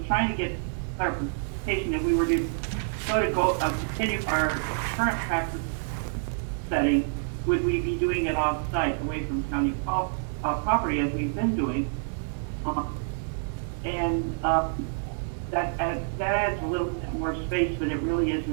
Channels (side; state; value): left; silent; digital silence